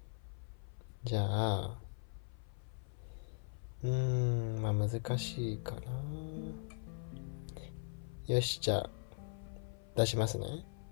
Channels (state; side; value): silent; right; 51 dB below the other